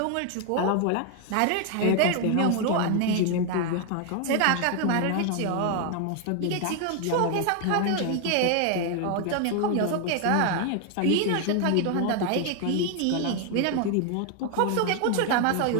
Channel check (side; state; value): both; different; correlation 0.00